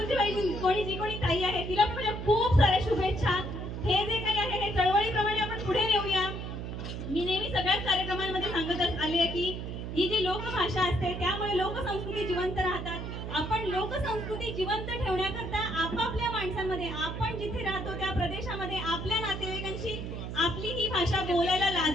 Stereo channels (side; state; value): right; noise; hum, 6 dB below the sound